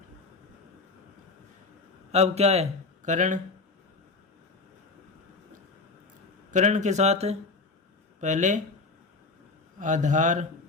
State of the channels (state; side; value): quieter; right; 3.8 dB